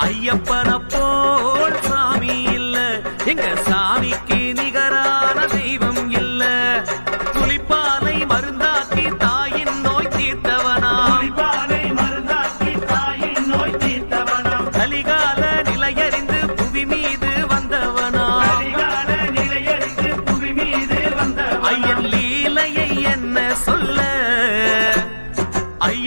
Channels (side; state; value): both; inverted; correlation -1.00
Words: ஐயப்பன போல் சாமி இல்ல, எங்க சாமிக்கு நிகரான தெய்வம் இல்ல. புலிப்பாலை மருந்தாக்கி தாயின் நோய் தீர்த்தவனா, புலிப்பாலை மருந்தாக்கி தாயின் நோய் தீர்த்தவனா, கலிகால நிலையறிந்து புவி மீது வந்தவனா, கலிகால நிலையறிந்து புவி மீது வந்தவனா, ஐயன் லீலையை என்ன சொல்ல.